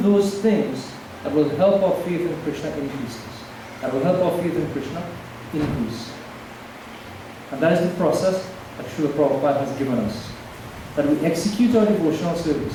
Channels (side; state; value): both; identical; correlation 1.00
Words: those things that will help our faith in Krishna increase. That will help our faith in Krishna increase. And that is the process that Srila Prabhupada has given us. That we execute our devotional